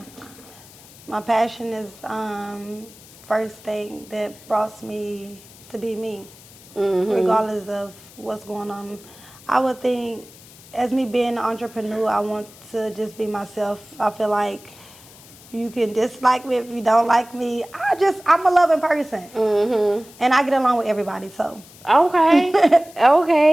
My passion is first thing that brought me to be me, regardless of what's going on. I would think, as me being an entrepreneur, I want to just be myself. I feel like you can dislike me if you don't like me. I'm a loving person, and I get along with everybody. So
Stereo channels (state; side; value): noise; left; hiss, 22 dB below the sound